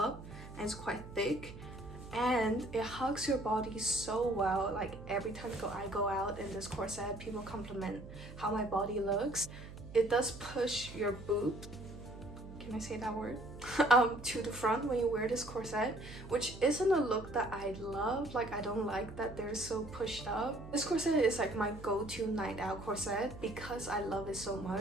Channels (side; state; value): right; noise; hum, 14 dB below the sound